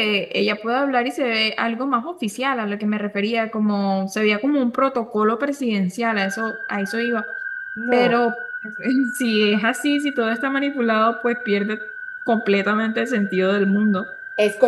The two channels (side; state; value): both; identical; correlation 1.00